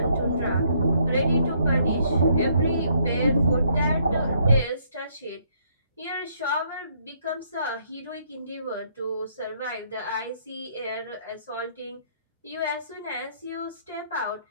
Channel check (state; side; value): inverted; both; correlation -0.68